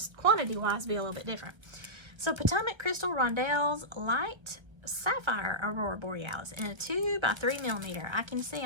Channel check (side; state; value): left; late; 1.3 ms